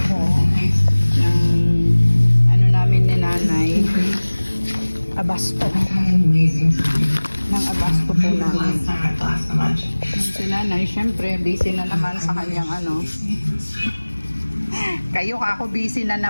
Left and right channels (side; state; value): both; inverted; correlation -1.00